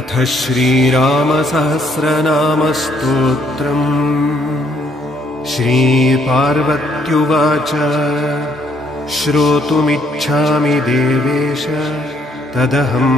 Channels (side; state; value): both; normal; correlation 0.69